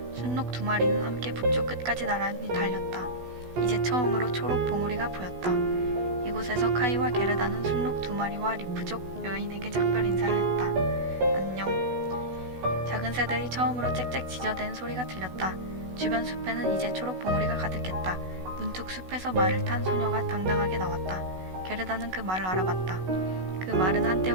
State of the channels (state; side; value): late; left; 16 ms